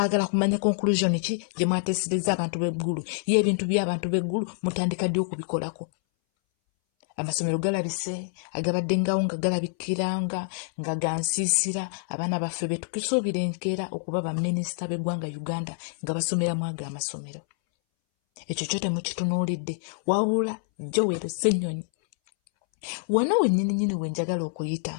kumanya conclusion ki gye mwateesereza abantu b'eggulu. Ye ebintu by'abantu b'eggulu mutandika ddi okubikolako? Amasomero galabise, agabadde ngawo nga galabikiranga nga gansiisira abaana baffe be tukisuubira enkeera okuba baminisita b'eggwanga Uganda nga basomeramu ago amasomero. Ekyo kyo temukitunuulidde. Wabula Joel Ssennyonyi wano wennyini we njagala okuyita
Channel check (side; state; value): right; silent; 60 dB below the other